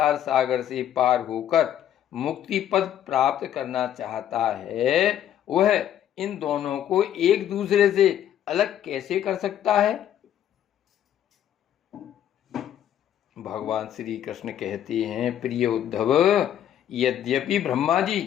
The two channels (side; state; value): right; quieter; 10.7 dB